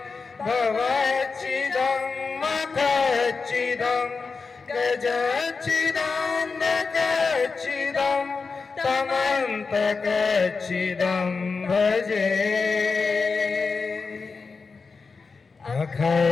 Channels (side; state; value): right; quieter; 4.6 dB